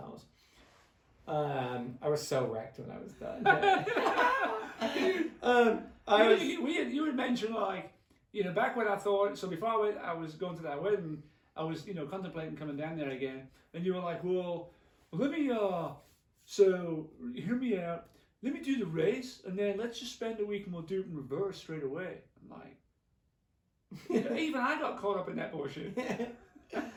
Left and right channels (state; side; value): identical; both; correlation 1.00